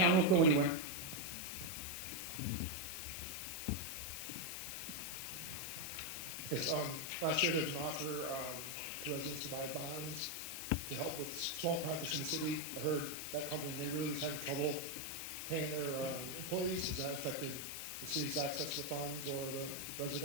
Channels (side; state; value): left; noise; hiss, 6 dB below the sound